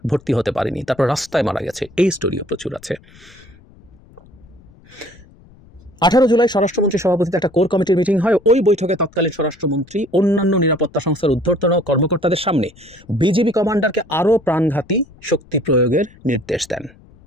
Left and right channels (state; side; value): noise; left; rumble, 25 dB below the sound